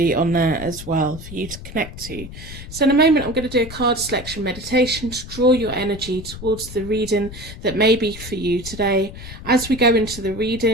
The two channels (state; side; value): noise; left; rumble, 12 dB below the sound